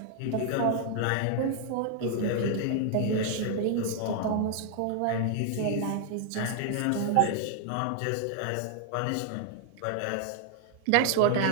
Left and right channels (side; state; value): both; different; correlation 0.00